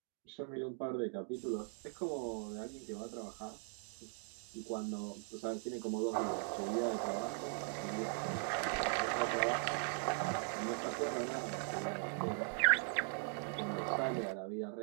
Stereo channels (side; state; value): left; silent; 51 dB below the other